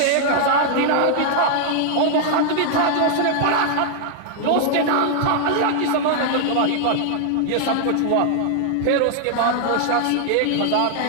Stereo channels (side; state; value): both; different; correlation 0.00